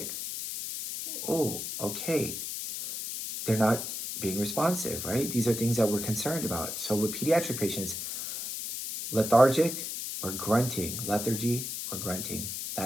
Oh, okay. They're not being responsive, right? These are things that we're concerned about. So with pediatric patients, lethargic or grunting, lethargy or grunting,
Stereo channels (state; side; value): noise; left; hiss, 5 dB below the sound